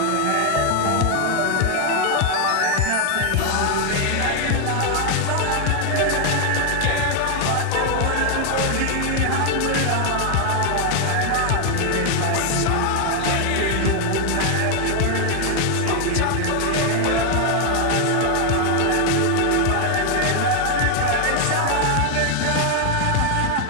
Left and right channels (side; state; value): both; different; correlation 0.00